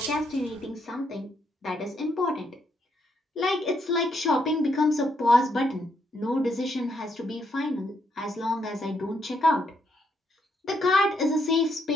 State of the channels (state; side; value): normal; both; correlation 0.76